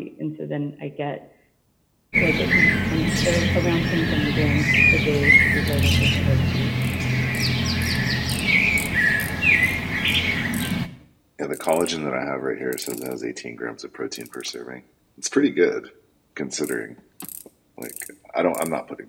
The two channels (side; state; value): both; identical; correlation 1.00